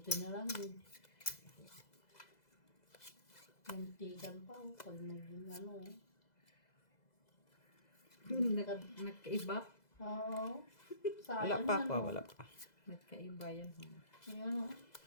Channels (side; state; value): right; late; 2.0 ms